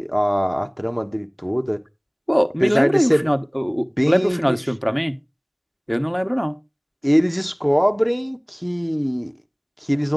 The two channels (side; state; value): both; identical; correlation 1.00